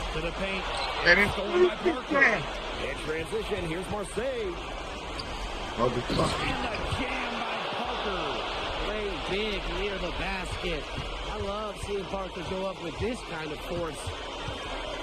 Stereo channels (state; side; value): identical; both; correlation 1.00